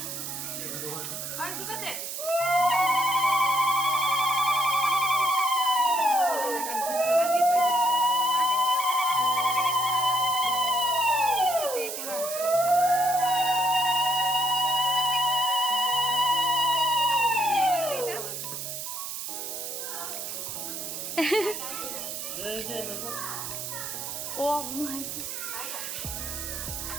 আর দুকাতে ও ঘুমাইছে।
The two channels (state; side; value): noise; right; hiss, 6 dB below the sound